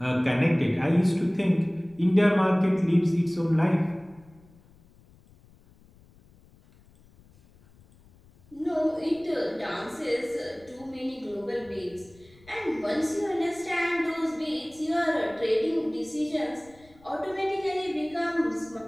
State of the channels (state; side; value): noise; left; rumble, 27 dB below the sound